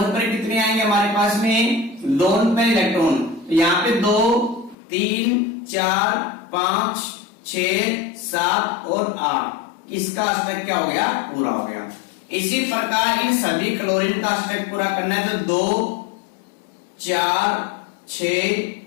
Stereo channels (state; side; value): drops out; right; at 4.8 s